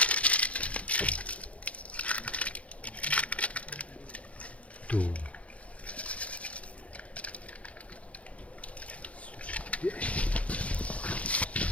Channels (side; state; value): right; late; 0.065 ms